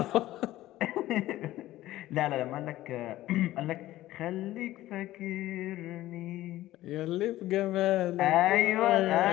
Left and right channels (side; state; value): right; quieter; 15.4 dB